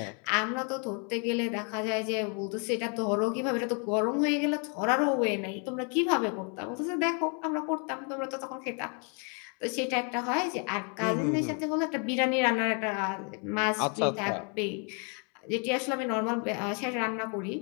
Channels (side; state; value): right; quieter; 37.6 dB